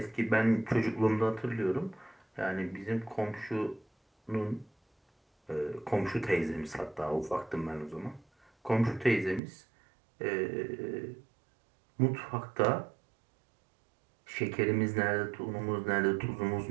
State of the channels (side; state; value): left; drops out; at 9.4 s